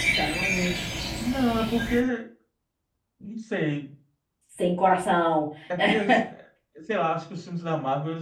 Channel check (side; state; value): both; identical; correlation 1.00